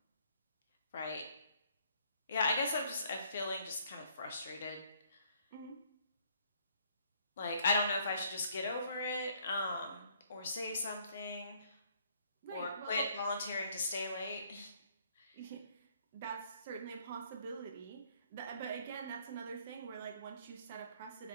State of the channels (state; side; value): inverted; both; correlation -0.64